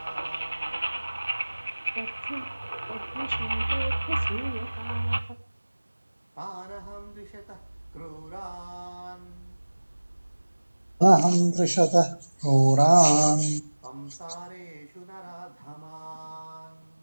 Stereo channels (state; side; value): inverted; both; correlation -1.00